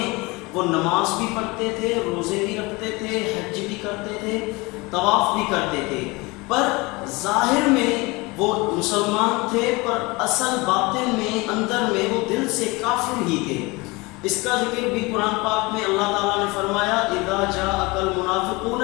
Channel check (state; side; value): quieter; right; 24.6 dB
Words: وہ نماز بھی پڑھتے تھے، روزے بھی رکھتے تھے، حج بھی کرتے تھے، طواف بھی کرتے تھے، پر ظاہر میں وہ مسلمان تھے پر اصل باطن میں، اندر میں وہ دل سے کافر ہی تھے۔ اس کا ذکر بھی قرآن پاک میں اللہ تعالیٰ نے فرمایا اذا جاءک